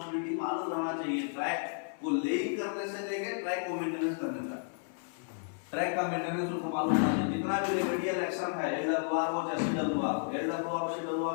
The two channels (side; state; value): right; silent; 56 dB below the other